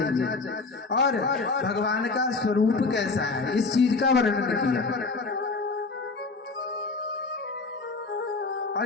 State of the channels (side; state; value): right; quieter; 4.0 dB